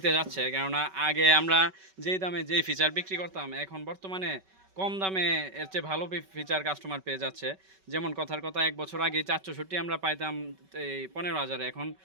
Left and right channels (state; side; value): late; left; 5.3 ms